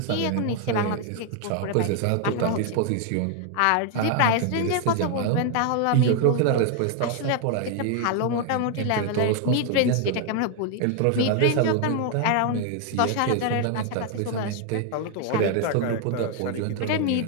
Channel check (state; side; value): different; both; correlation 0.00